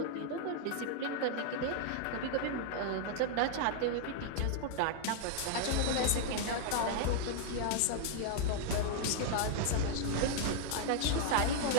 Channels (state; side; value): different; both; correlation 0.00